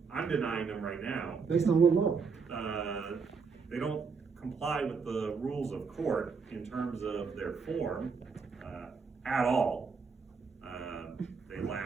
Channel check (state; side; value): quieter; left; 5.3 dB